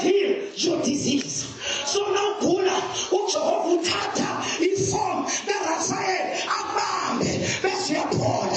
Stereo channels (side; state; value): both; identical; correlation 1.00